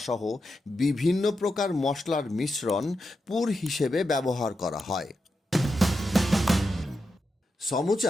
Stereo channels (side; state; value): both; normal; correlation 0.87